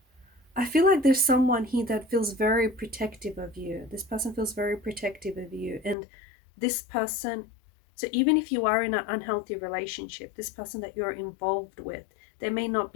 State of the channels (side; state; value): right; drops out; at 6.0 s